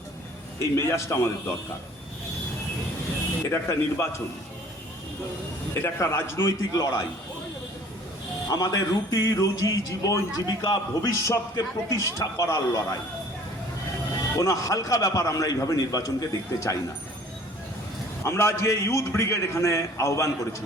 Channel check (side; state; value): both; normal; correlation 0.52